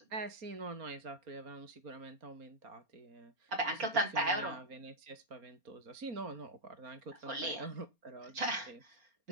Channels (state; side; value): late; left; 4.3 ms